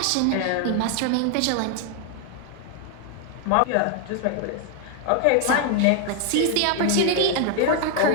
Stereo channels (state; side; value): different; both; correlation 0.00